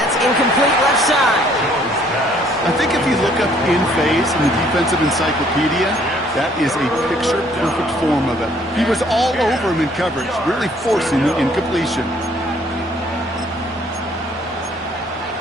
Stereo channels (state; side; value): normal; both; correlation 0.62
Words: incomplete left side. I think if you look up in phase in the defensive encyclopedia, that is a picture-perfect form of it. He was all over him in coverage, really forcing the incompletion.